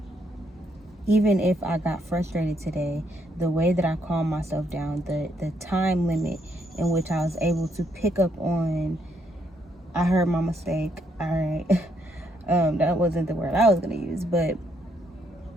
Even if I got frustrated today, the way that I calmed myself down, the time limit in which I was able to pick up on, I heard my mistake. All right. That wasn't the word I was going to use. But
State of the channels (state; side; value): normal; both; correlation 0.74